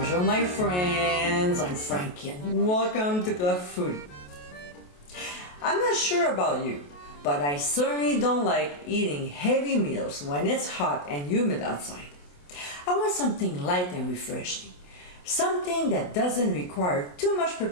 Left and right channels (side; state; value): right; late; 28 ms